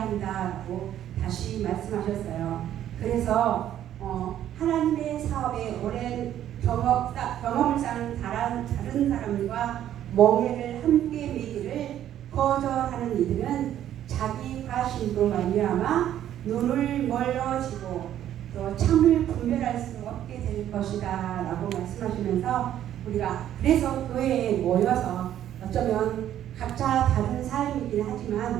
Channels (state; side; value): quieter; left; 11.3 dB